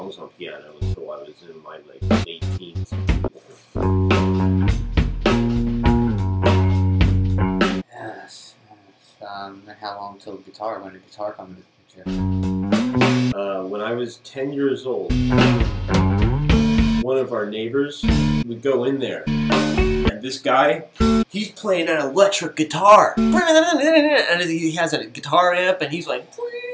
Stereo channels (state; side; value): identical; both; correlation 1.00